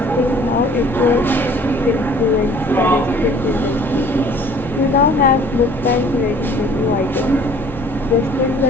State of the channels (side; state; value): both; normal; correlation 0.53